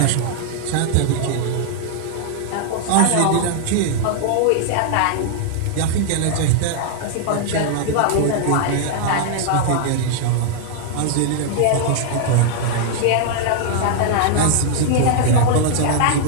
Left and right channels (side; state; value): both; different; correlation -0.01